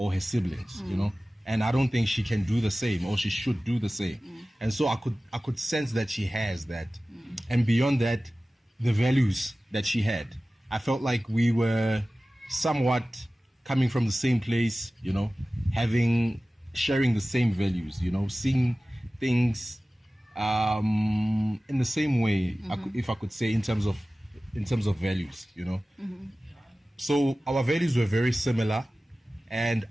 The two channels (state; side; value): normal; both; correlation 0.96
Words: her siblings, and I don't think she can do the same or she should do the same. And so I could sense that she has that. And beyond that, the values that she had, I felt like we were somewhat coming from the same place, sharing the same values, seeing things in the same way, if I could say, in terms of values, So our values were very similar, and